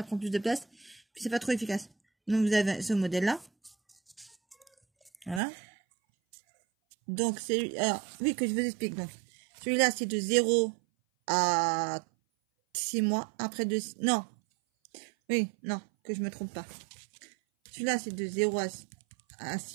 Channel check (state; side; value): drops out; left; at 5.4 s